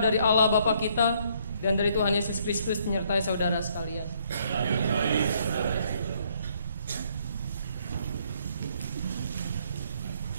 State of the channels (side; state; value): both; inverted; correlation -0.68